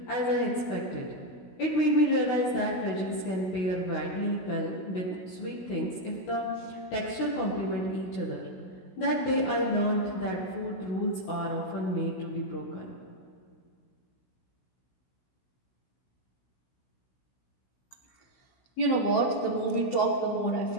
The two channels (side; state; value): right; late; 16 ms